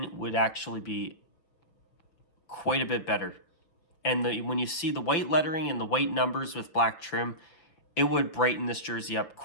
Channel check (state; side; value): late; right; 5.8 ms